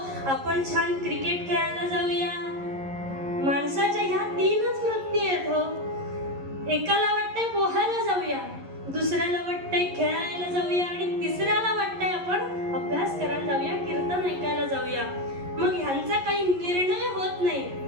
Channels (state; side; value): late; left; 11 ms